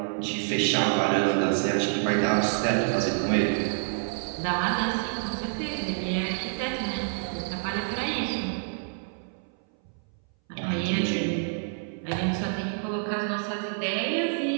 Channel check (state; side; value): silent; left; 60 dB below the other